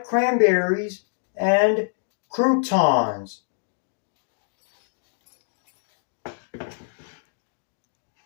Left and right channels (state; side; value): silent; right; digital silence